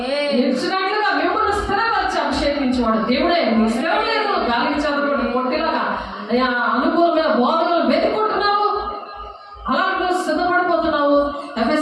నిలిచినట్లుగా మిమ్మల్ని స్థిరపరిచి అభిషేకించేవాడు దేవుడే. మీ స్థిరం లేదు, గాలికి చదవడం కొట్టిలాగా అనుకూలమైన బోధనలు వెతుకుంటున్నావు, అలాంటి సిద్ధపడిపోతున్నావు.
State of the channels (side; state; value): both; identical; correlation 1.00